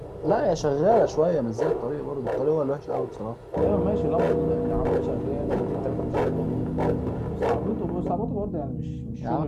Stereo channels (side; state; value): both; identical; correlation 1.00